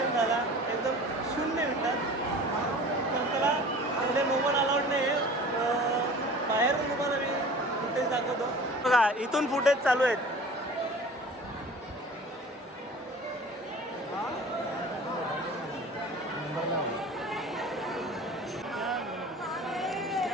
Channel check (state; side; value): normal; both; correlation 0.42